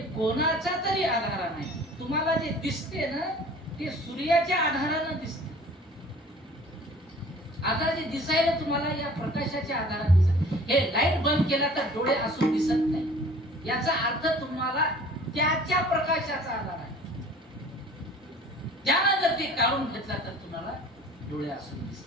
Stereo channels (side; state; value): both; normal; correlation 0.48